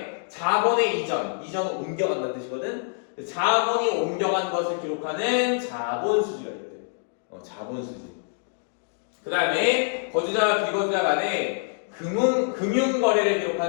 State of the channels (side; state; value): right; silent; digital silence